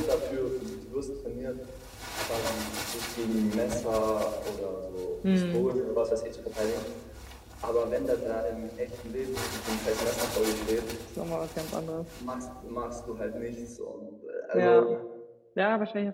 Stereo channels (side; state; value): both; identical; correlation 1.00